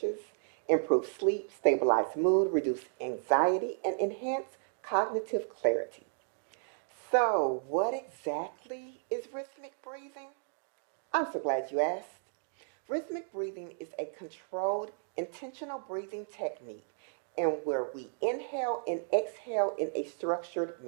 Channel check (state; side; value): silent; left; digital silence